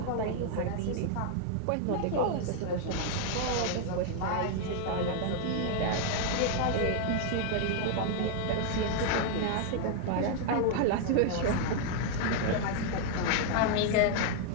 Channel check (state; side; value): different; both; correlation 0.00